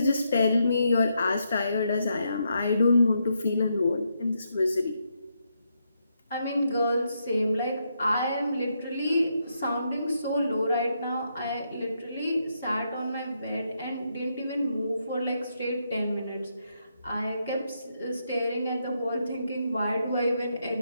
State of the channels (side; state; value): both; inverted; correlation -0.80